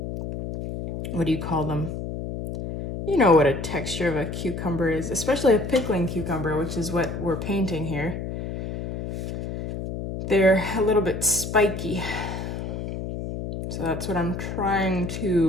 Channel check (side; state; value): left; noise; hum, 6 dB below the sound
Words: what do you call them? You know what a texture of a cucumber is, especially a pickling cucumber, which is what we're painting here. They're a little bit spiky. So that's what I'm trying